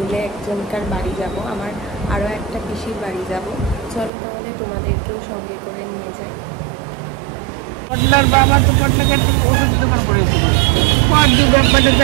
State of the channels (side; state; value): left; drops out; at 4.1 s